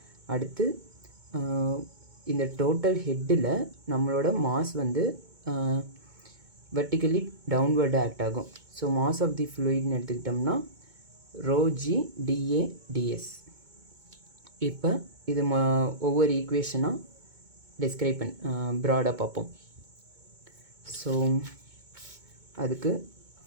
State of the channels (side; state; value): left; late; 2.2 ms